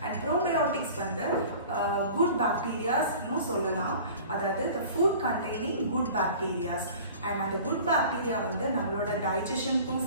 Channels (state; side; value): inverted; both; correlation -0.43